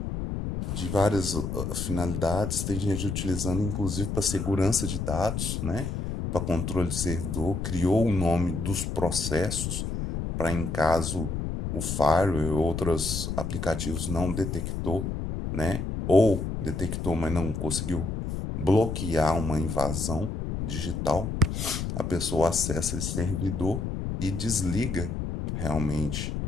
várias finalidades. Tem gente utilizando inclusive para segurança de dados, né, para controle de servidor, criou o nome dos processos para em caso o firewall ou outros aplicativos não detectou, né, ou detectou, mas não conseguiu bloquear uma invasão digital, a pessoa acessa esse servidor e desliga realmente.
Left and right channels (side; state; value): left; noise; rumble, 3 dB below the sound